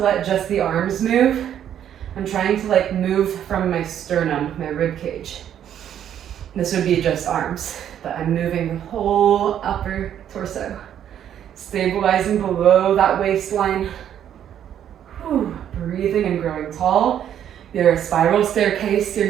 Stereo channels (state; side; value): quieter; left; 10.0 dB